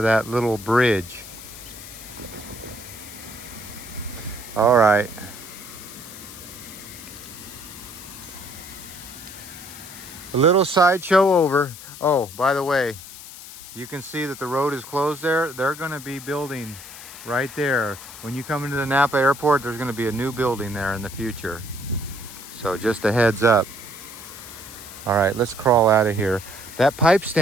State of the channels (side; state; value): left; noise; hiss, 14 dB below the sound